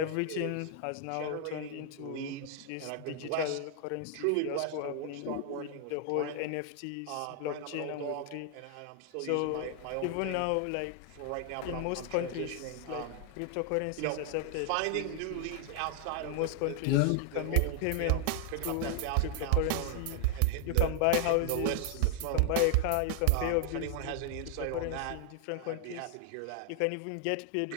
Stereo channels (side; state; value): both; different; correlation 0.00